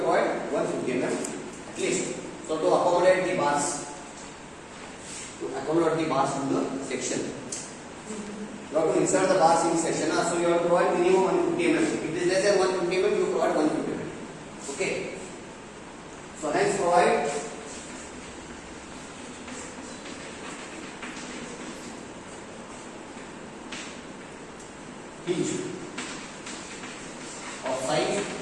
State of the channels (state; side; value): identical; both; correlation 1.00